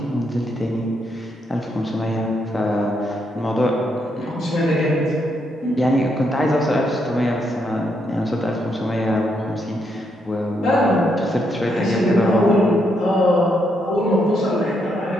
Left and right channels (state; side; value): normal; both; correlation 0.77